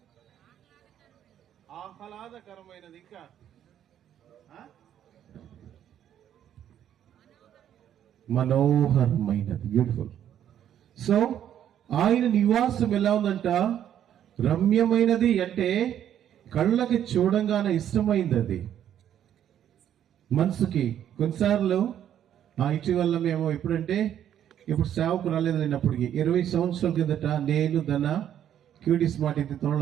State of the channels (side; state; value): left; quieter; 10.3 dB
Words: ఆహ్లాదకరమైనది. ఇంకా మనోహరమైనది, బ్యూటిఫుల్. సో ఆయన నివాసం ఎలా ఉందంట? రమ్యమైనది. అంటే కళ్ళకి చూడంగానే ఇష్టమైంది అది మనసుకి. కొన్నిసార్లు ఇటీవల మేము ఇప్పుడు సేవకు రాలేదు లేనప్పటికీ 20 సంవత్సరాల కిందట నేను క్యూటీ స్మార్ట్ ఇది